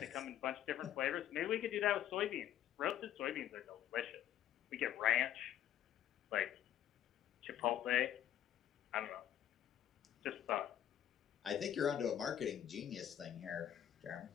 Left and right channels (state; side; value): quieter; right; 11.1 dB